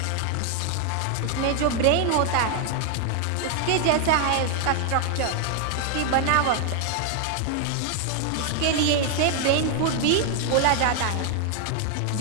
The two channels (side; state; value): both; different; correlation 0.00